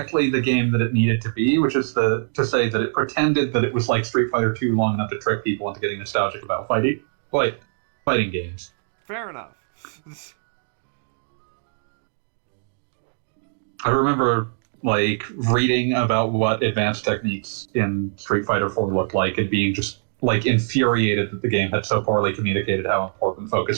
the game that it needed to be, which is to say that it pretended that it was like Street Fighter 2 long enough to trick people into getting nostalgic about fighting games. Fair enough. I remember like reading about what advanced techniques in Street Fighter 4 looked like and being just like infuriated that the game had so poorly communicated how important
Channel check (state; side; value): silent; left; digital silence